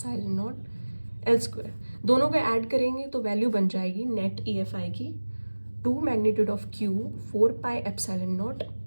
naught L square, दोनों को ऐड करेंगे तो वैल्यू बन जाएगी नेट EFI की 2 magnitude of Q 4 pi epsilon naught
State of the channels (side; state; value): both; inverted; correlation -1.00